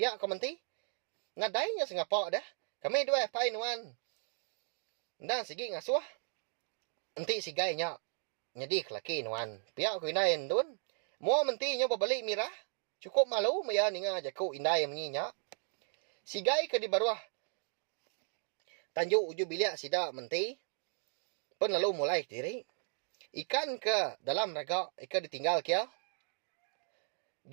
ko menti. Ngadainya sengapa dah. Kami dua pai nuan. Dan segi ngasuh. Enti sigainya. Nyedi kelaki nuan. Pihak ko indai endun. Mua menti nya berbalik mirah. Cukup malu maya ninga jaku indai menyinya. Sigai ke di baruah. Tanjuk uju bilik sida menti. Pun lalu mulai diri. Ikan ke dalam raga. Ikan ditinggal kia.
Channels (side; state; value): left; silent; 54 dB below the other